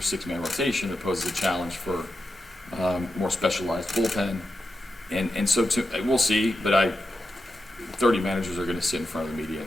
rotation. It poses a challenge for more specialized bullpen, and so we'll see. But 30 managers are going to sit in front of the media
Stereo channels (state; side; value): normal; both; correlation 0.89